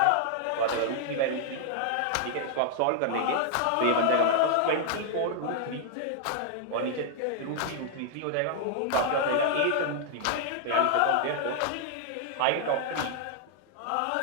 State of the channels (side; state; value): both; different; correlation -0.01